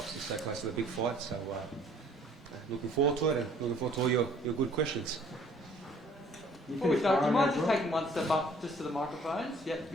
stay close to the big fight, so looking forward to it and looking forward to all your good questions. Before we start, do you mind just taking one step up just to the microphones? Yep,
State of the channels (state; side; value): normal; both; correlation 0.57